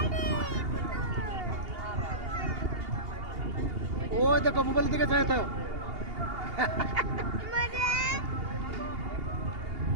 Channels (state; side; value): late; left; 2.8 ms